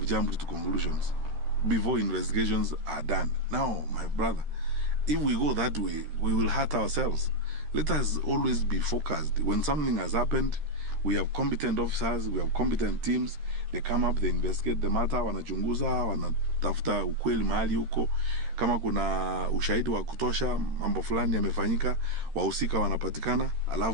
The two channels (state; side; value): late; left; 13 ms